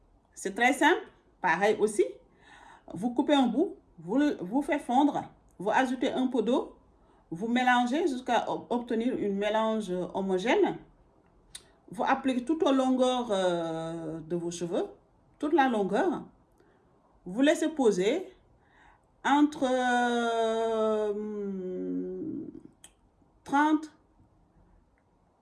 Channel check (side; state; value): both; identical; correlation 1.00